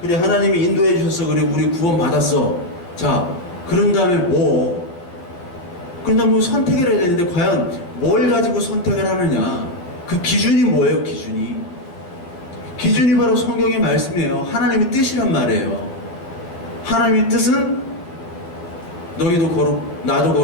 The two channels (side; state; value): right; late; 12 ms